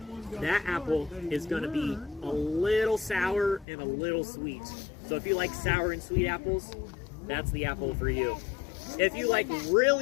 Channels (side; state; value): right; drops out; at 3.7 s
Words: that apple is going to be a little sour and a little sweet. So if you like sour and sweet apples, that's the apple for you. If you like